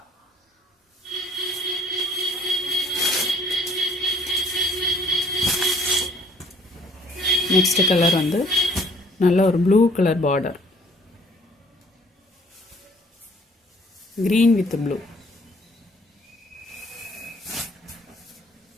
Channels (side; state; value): both; normal; correlation 0.59